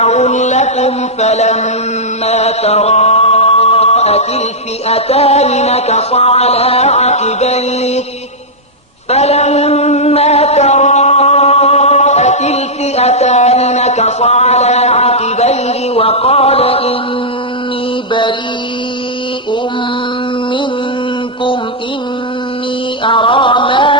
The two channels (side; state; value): both; normal; correlation -0.07